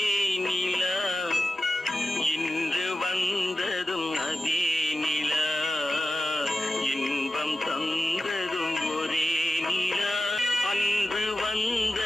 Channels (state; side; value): normal; both; correlation 0.93